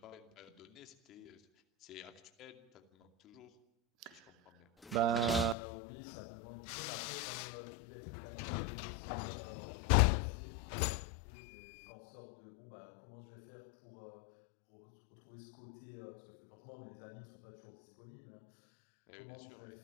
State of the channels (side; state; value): right; drops out; at 5.6 s